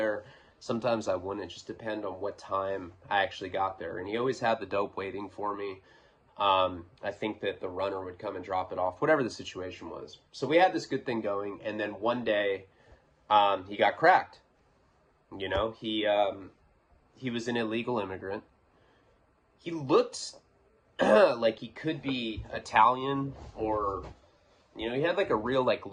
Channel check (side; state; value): both; identical; correlation 1.00